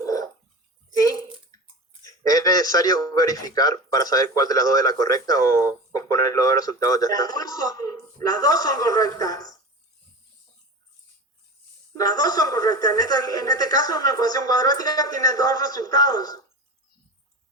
¿Sí? ¿Es necesario verificar para saber cuál de las dos es la correcta o con poner los dos resultados ya está? Las dos son correctas. Las dos son correctas. En este caso, una ecuación cuadrática tiene dos resultados.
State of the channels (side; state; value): both; normal; correlation 0.29